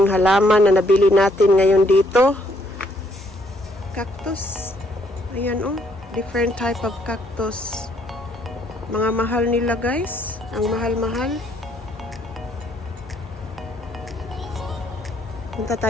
halaman na nabili natin ngayon dito. Cactus. Ayan different type of cactus. Mga mahal nila guys. Ang mahal-mahal. Punta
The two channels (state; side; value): normal; both; correlation 0.69